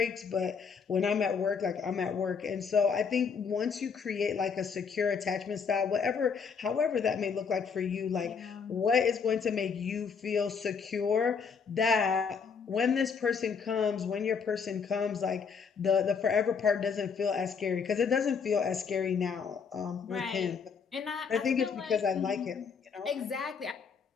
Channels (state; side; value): quieter; right; 5.9 dB